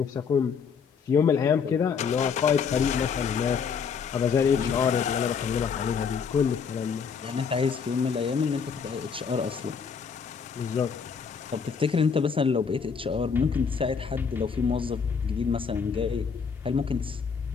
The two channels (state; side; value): quieter; right; 6.2 dB